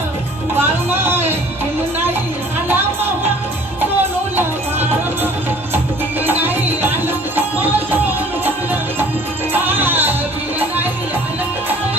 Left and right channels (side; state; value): both; normal; correlation 0.51